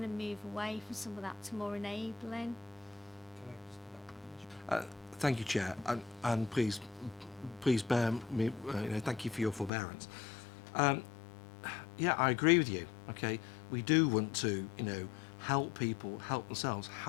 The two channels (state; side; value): drops out; right; at 9.7 s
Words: to move away from some of that to more enabling. Thank you, Chair, and please bear me, you know, thank you for your forbearance. Yeah, I agree with you. Okay, we do want to, you know, help people help themselves.